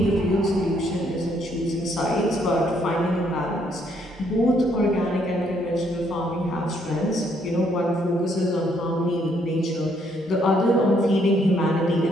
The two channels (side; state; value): both; normal; correlation 0.70